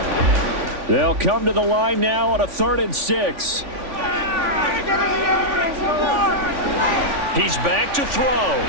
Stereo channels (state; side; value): late; left; 3.5 ms